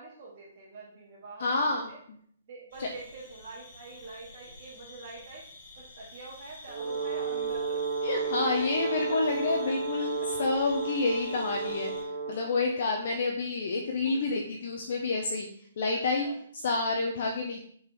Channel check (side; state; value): both; inverted; correlation -0.64